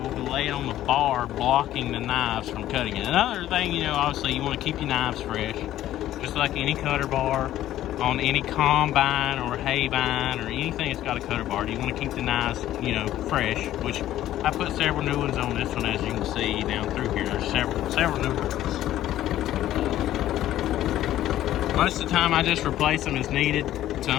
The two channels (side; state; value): right; quieter; 13.2 dB